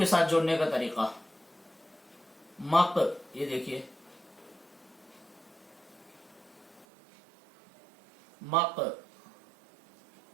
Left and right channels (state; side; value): drops out; left; at 6.9 s